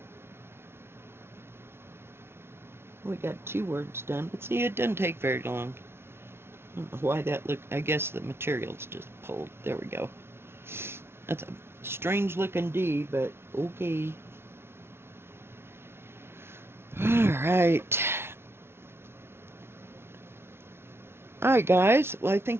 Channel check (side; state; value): left; late; 0.12 ms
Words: We got 2 words done. But see, it doesn't take very long. I don't know why that looked. I guess the material's just pulled. There we go. That's a strange looking D, but okay. Alright. Alright, guys. Well, I